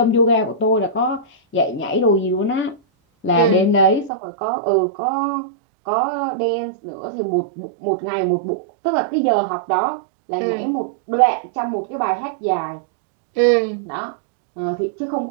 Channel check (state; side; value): drops out; left; at 4.1 s